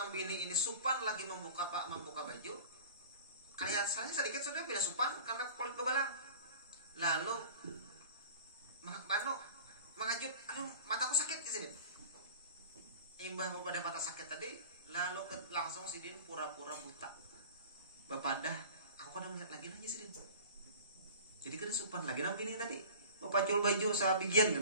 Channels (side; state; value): both; inverted; correlation -0.40